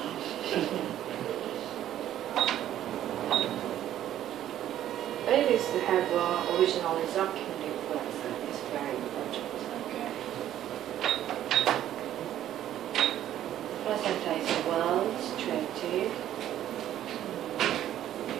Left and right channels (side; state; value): left; quieter; 11.9 dB